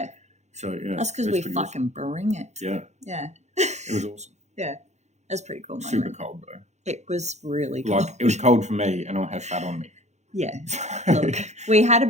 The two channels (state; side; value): late; left; 0.33 ms